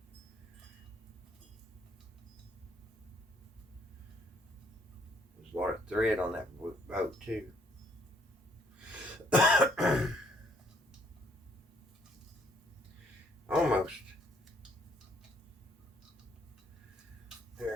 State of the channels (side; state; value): both; normal; correlation 0.66